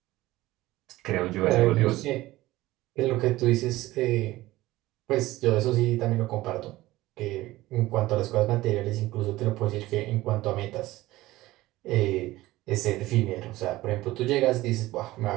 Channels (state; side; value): quieter; left; 17.6 dB